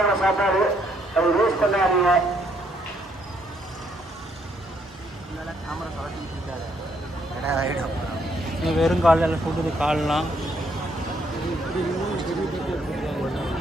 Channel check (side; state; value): both; normal; correlation 0.71